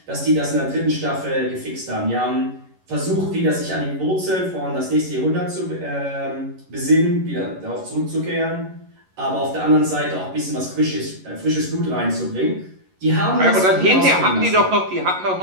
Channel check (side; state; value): left; late; 11 ms